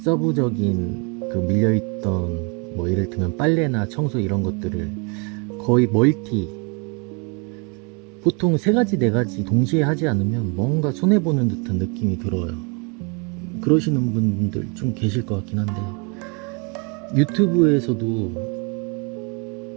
그 밀려있던 뭐 예를 들면 빨래나 청소 이런 것들을 거의 보통 세 가지 네 가지 동시에 하지 않으면 뭔가 손해보는 듯한 느낌이 들어요. 그러시는 분들 좀 계실 것 같긴 한데, 유튜브에서도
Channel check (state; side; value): quieter; left; 33.2 dB